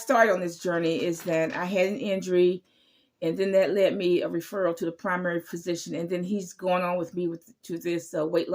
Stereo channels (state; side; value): identical; both; correlation 1.00